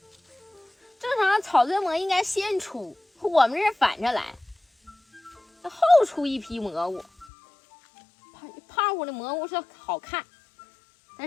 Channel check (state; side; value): drops out; right; at 7.2 s